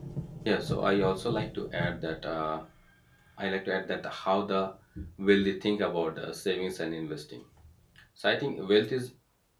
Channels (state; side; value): identical; both; correlation 1.00